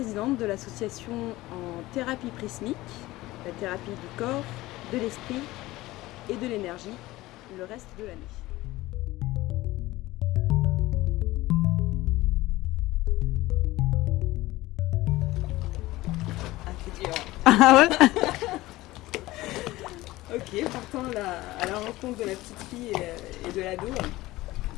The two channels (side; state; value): right; quieter; 18.3 dB